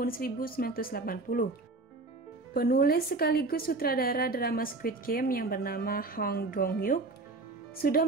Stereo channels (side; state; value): left; quieter; 3.3 dB